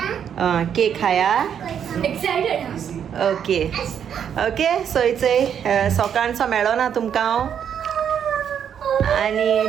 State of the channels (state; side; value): quieter; left; 8.5 dB